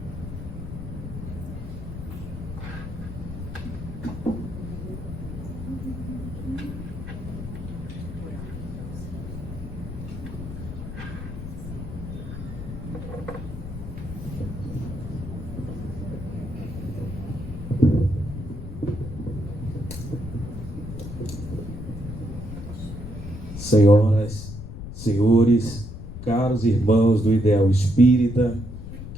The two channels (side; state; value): left; noise; rumble, 9 dB below the sound